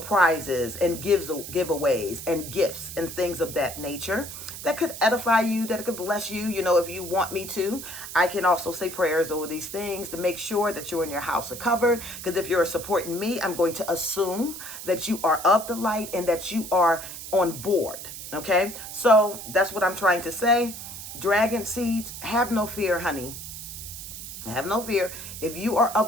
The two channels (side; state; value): right; noise; hiss, 10 dB below the sound